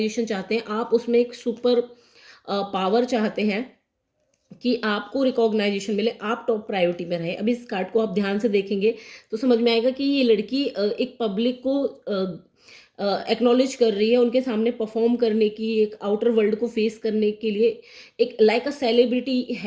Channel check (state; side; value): identical; both; correlation 1.00